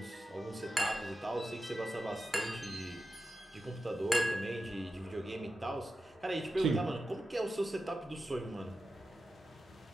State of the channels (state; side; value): normal; both; correlation 0.91